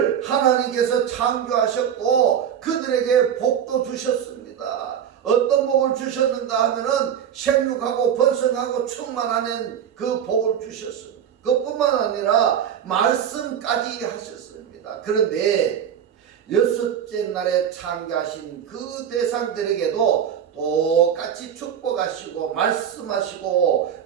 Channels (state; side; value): quieter; left; 8.9 dB